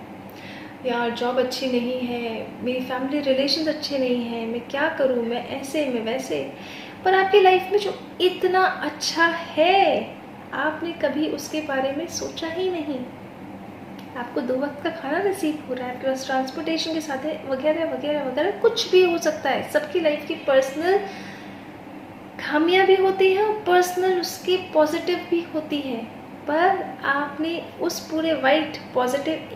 यार जॉब अच्छी नहीं है, मेरी फैमिली रिलेशंस अच्छे नहीं हैं, मैं क्या करूँ, मैं ऐसे मैं वैसे, पर आपकी लाइफ में जो इतना अच्छा है, आपने कभी उसके बारे में सोचा ही नहीं। आपको 2 वक्त का खाना नसीब हो रहा है, आपके पास ट्रांसपोर्टेशन के साथ है, वगैरह वगैरह वगैरह, कुछ भी हो सकता है। सबकी लाइफ की पर्सनल खामियां भी होती हैं और पर्सनल उसकी पॉजिटिव भी होती है, पर आपने उस पूरे वाइट पॉजिटिव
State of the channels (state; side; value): identical; both; correlation 1.00